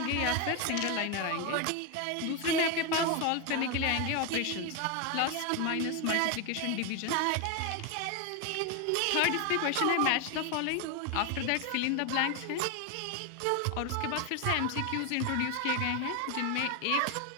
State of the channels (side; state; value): both; different; correlation 0.02